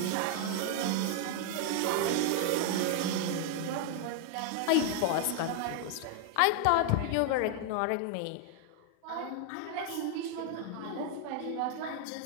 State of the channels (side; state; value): both; different; correlation 0.00